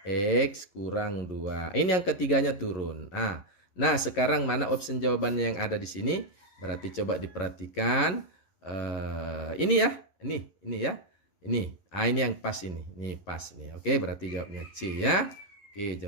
X kurang 2. Ini yang ketiganya turun. Nah, sekarang mana opsi jawabannya yang ada di sini? Berarti coba diperhatikan. Ini ya. Ini ya. Ini. Ini yang pas ini. Ini pas nih. Oke, berarti jawabnya C ya. Oke,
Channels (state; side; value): late; right; 11 ms